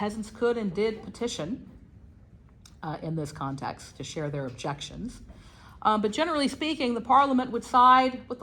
could and did petition in this context to share their objections. But generally speaking, the Parliament would side with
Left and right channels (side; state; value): both; identical; correlation 1.00